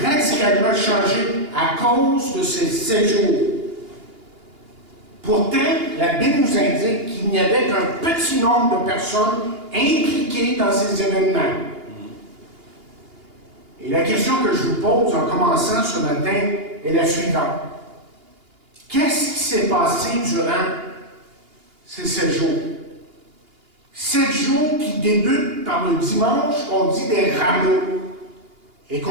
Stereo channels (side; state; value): left; late; 2.8 ms